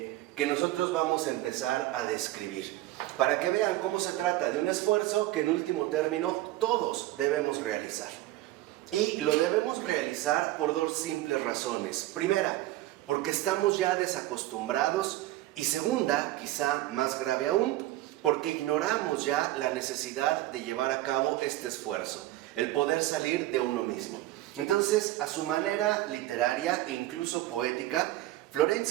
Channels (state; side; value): quieter; left; 16.2 dB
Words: nosotros vamos a empezar a describir, para que vean cómo se trata de un esfuerzo que en último término todos debemos realizar. Y lo debemos realizar por dos simples razones. Primera, porque estamos ya desacostumbrados, y segunda, quizá más grave aún, porque ignoramos ya la necesidad de llevar a cabo este esfuerzo. el poder salir de uno mismo. Entonces, a su manera literaria e incluso poética,